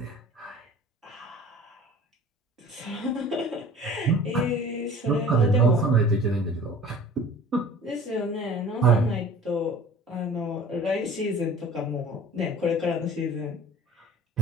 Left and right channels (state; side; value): normal; both; correlation 0.45